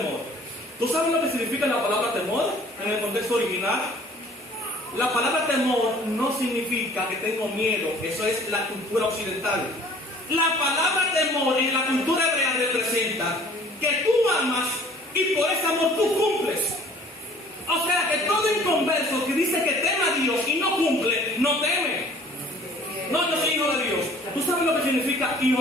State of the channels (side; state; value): both; normal; correlation 0.52